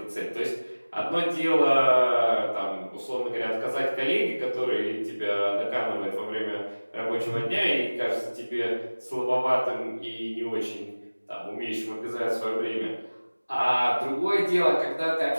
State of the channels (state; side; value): inverted; both; correlation -1.00